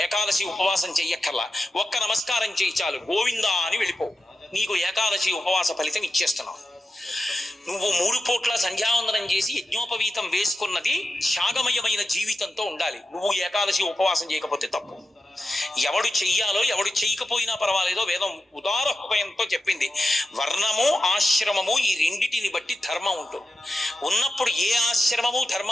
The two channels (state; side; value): normal; both; correlation 0.90